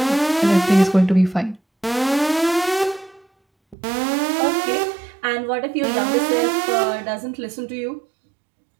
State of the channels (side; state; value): left; drops out; at 3.8 s